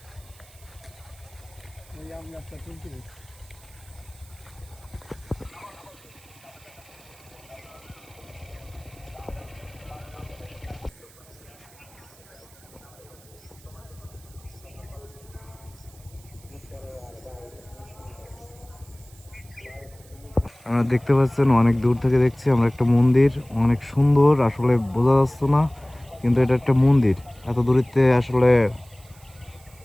আমরা দেখতে পাচ্ছেন অনেক দূর থেকে দেখছি আমরা একটা মন্দির, অনেক সুন্দর, আসলে বোঝা যাচ্ছে না কিন্তু এটা একটা মন্দির। এত দূরিতে আসলে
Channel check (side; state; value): right; noise; hiss, 25 dB below the sound